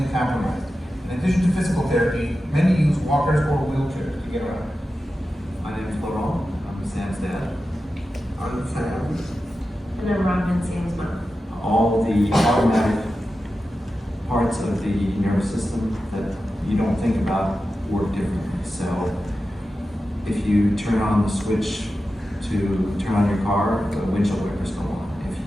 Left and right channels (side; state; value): both; normal; correlation 0.92